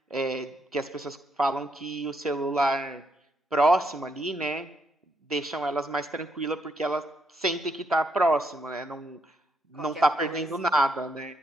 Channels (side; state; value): both; normal; correlation 0.76